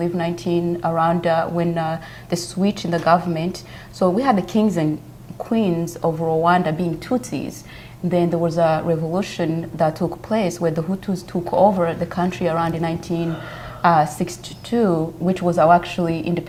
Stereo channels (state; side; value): identical; both; correlation 1.00